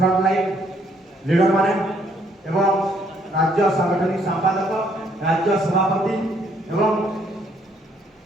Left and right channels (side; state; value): both; normal; correlation 0.68